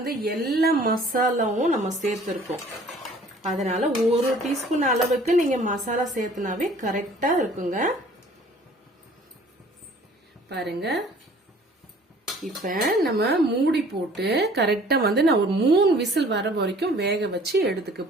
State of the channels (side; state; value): both; normal; correlation 0.52